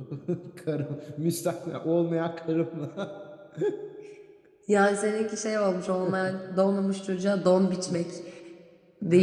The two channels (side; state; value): both; identical; correlation 1.00